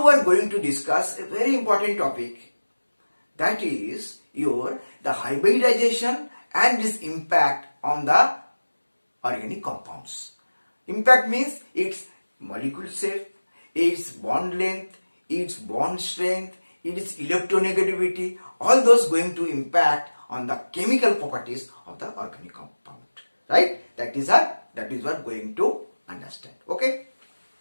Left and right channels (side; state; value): both; inverted; correlation -1.00